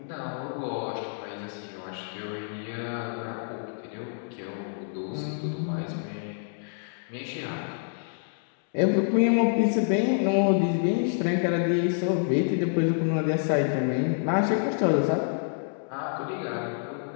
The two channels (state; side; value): silent; right; digital silence